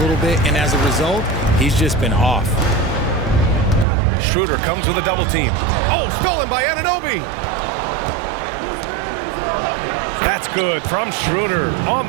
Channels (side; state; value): left; drops out; at 3.9 s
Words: bit, and as a result, he's just been off. Schroeder comes with a double team. Oh, stolen by Anunoby. That's good from Schroeder on